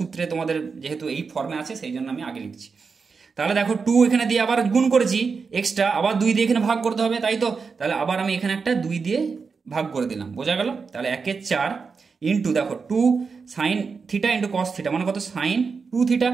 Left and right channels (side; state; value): left; quieter; 5.1 dB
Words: তোমাদের যেহেতু এই ফর্মে আছে সেই জন্য আমি আগে লিখছি। তাহলে দেখো 2 এখানে দিয়ে আবার গুণ করেছি এক্সট্রা, আবার 2 দিয়ে এখানে ভাগ করতে হবে, তাই তো। তাহলে আবার আমি এখানে একটা 2 দিয়ে ভাগ করে দিলাম, বোঝা গেল। তাহলে 1/4 ইন্টু দেখো 2 sine theta into cos theta মানে কত, সাইন 2 থিটা